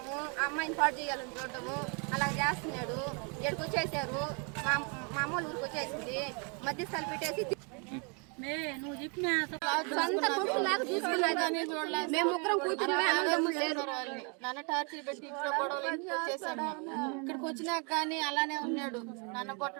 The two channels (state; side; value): quieter; left; 35.7 dB